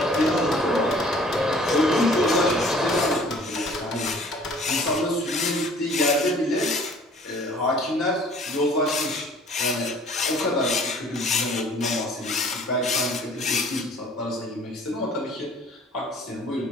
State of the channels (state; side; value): normal; both; correlation 0.53